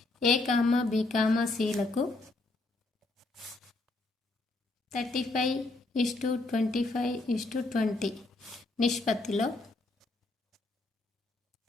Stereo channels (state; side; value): quieter; right; 3.1 dB